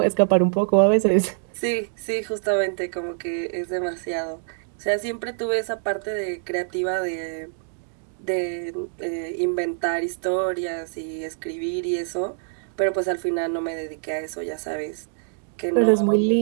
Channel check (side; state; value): left; silent; digital silence